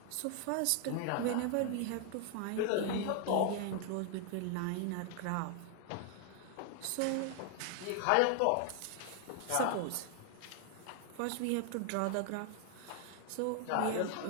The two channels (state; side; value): different; both; correlation 0.00